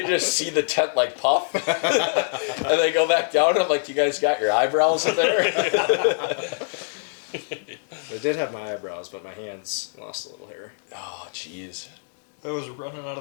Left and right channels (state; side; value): silent; right; digital silence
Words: just see the tent like puff. And they go back down, and I'm like, you guys got your eyebrows in there? I did have my eyebrows, but my hands lost a little hair. Oh, jeez. It was running out